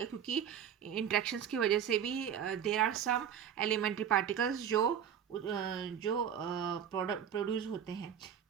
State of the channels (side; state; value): left; quieter; 8.7 dB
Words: क्योंकि इंटरेक्शंस की वजह से भी there are some elementary particles जो प्रोड्यूस होते हैं।